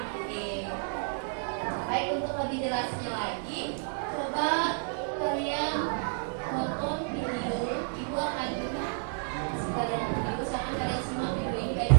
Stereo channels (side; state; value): left; silent; 58 dB below the other